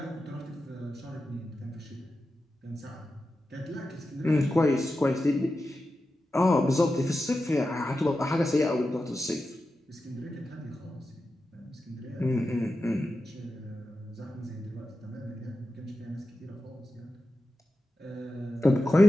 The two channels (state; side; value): normal; both; correlation 0.91